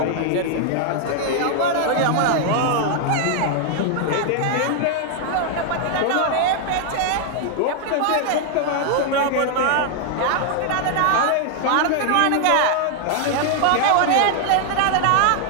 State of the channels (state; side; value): different; both; correlation 0.00